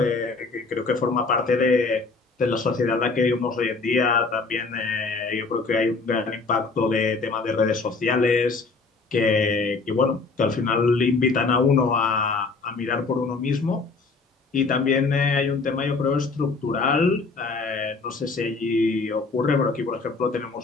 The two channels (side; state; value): right; quieter; 4.1 dB